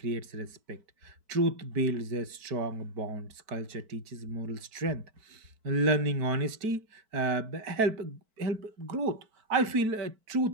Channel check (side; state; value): left; late; 4.6 ms